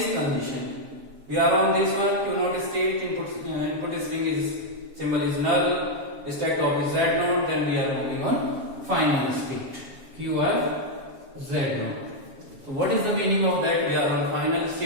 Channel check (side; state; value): left; late; 7.2 ms